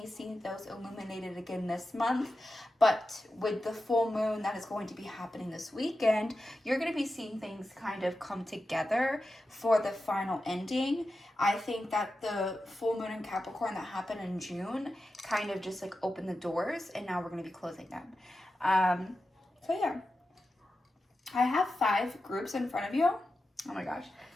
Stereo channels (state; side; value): normal; both; correlation 0.91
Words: see those illuminated again this month, but with the full moon that is going to be happening this weekend, you're going to be seeing things kind of come together for the final ending. I think that the full moon in Capricorn that happened in June kind of just like opened the doors, and now we're going to be closing them. So yeah, I have 5 groups in front of you. Oh my gosh,